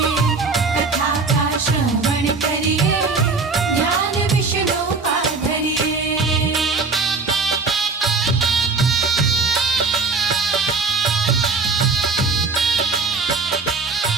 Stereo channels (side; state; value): left; quieter; 4.3 dB